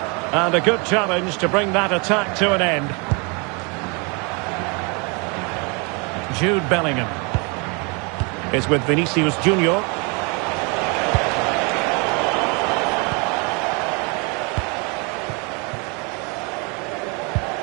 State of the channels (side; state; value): left; quieter; 31.6 dB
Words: And a good challenge to bring that attack to an end. Jude Bellingham is with Vinicius Junior.